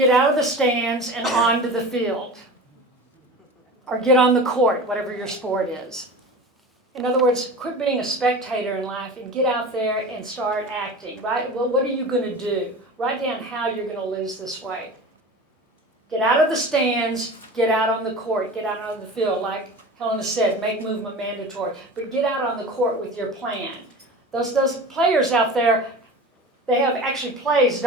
out of the stands and onto the field. Or get on the court, whatever your sport is. In other words, quit being a spectator in life and get out there and start acting, right? Well, what are you going to do? Write down how you're going to lose this weight. Get out of the stands, get out on the court, get out on the field. Like Helena said, make movement mandatory. But get out on the court with your plan. Those players out there, they have actually plays,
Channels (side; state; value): both; normal; correlation 0.34